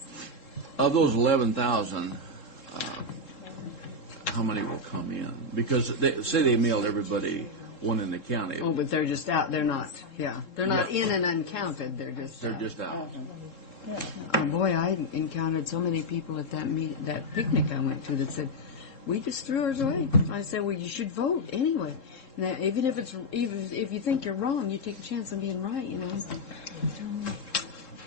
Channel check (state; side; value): late; right; 3.7 ms